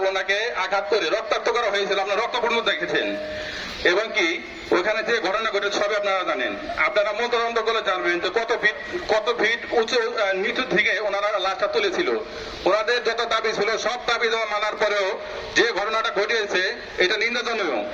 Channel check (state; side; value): identical; both; correlation 1.00